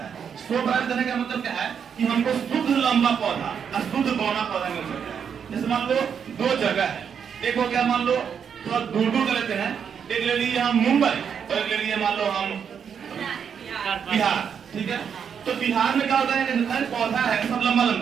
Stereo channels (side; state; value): left; quieter; 7.4 dB